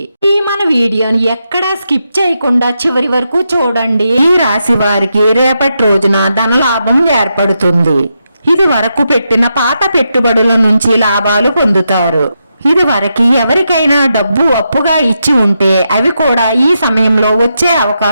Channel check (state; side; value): inverted; both; correlation -0.85